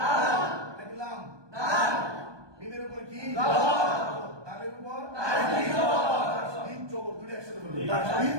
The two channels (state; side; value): late; left; 1.2 ms